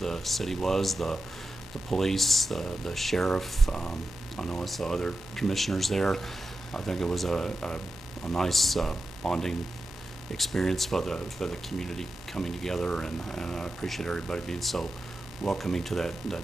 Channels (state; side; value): normal; both; correlation 0.91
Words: city was. The police, the sheriff. I know I saw other commissioners there. I think it was a nice bonding experience for the community coming together, and I appreciate everybody being so welcoming to that